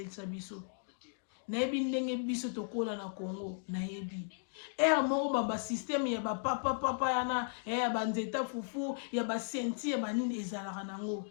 biso nayebi ndenge biso tokola na Congo nayebi ere moko basysteme ya bapapapapa yana ya banzeta fufu ya basenti ya banini ezalaka nango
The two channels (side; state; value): right; silent; digital silence